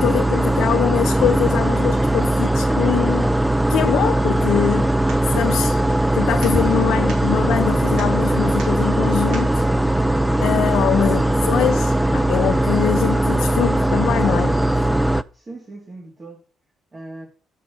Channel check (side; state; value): both; normal; correlation 0.85